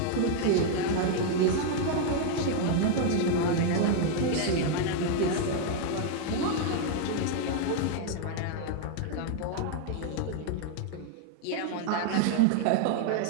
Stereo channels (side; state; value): both; different; correlation 0.00